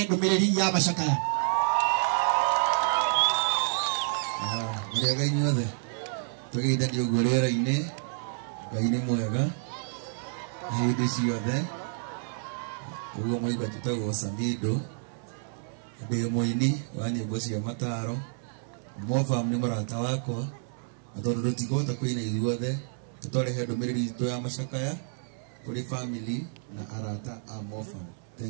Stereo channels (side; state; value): left; silent; 58 dB below the other